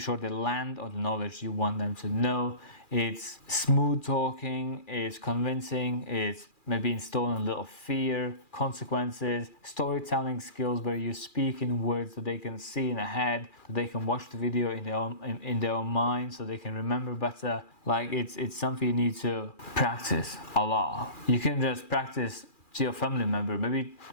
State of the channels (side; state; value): right; late; 2.4 ms